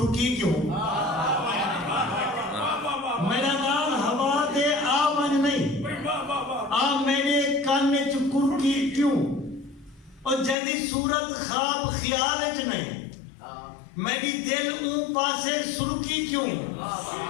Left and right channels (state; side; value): drops out; right; at 10.6 s